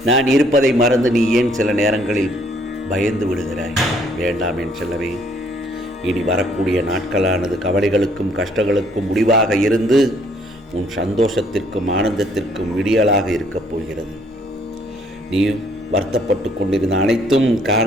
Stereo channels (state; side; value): normal; both; correlation 0.64